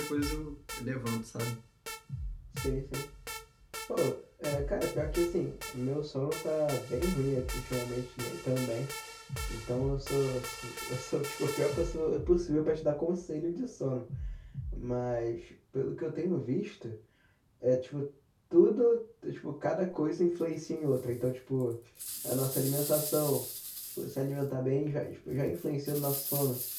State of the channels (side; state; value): both; identical; correlation 1.00